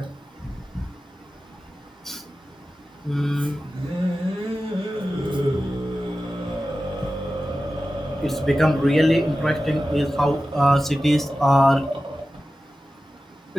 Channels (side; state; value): both; normal; correlation 0.94